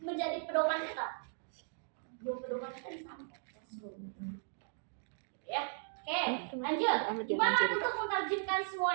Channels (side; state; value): left; silent; digital silence